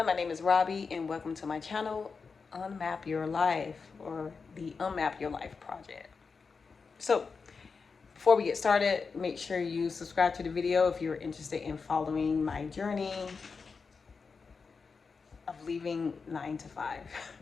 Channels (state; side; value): quieter; right; 5.0 dB